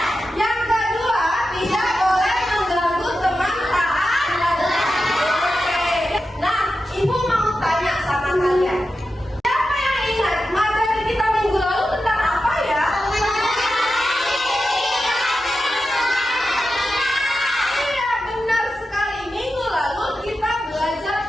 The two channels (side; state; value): both; normal; correlation 0.91